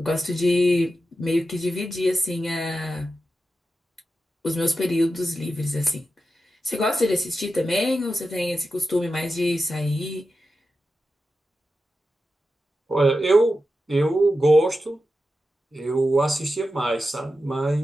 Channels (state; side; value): normal; both; correlation 0.91